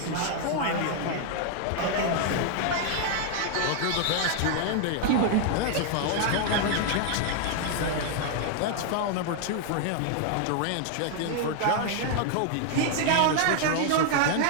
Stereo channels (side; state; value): both; different; correlation 0.00